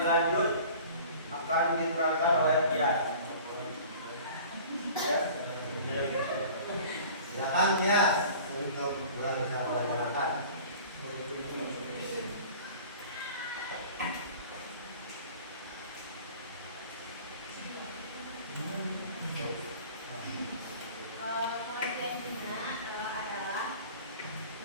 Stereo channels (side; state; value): both; inverted; correlation -0.44